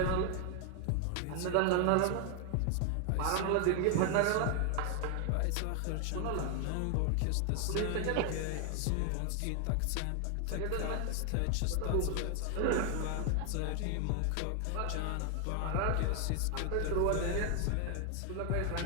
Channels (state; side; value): different; both; correlation 0.00